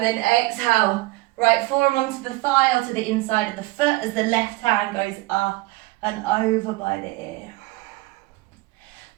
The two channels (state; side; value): quieter; left; 21.0 dB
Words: then exhale, right forearm onto the thigh or to the inside of the foot as the left hand goes up and over by the ear.